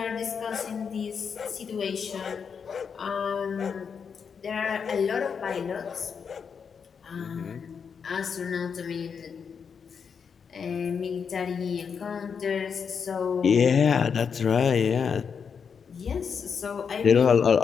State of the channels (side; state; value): right; quieter; 6.4 dB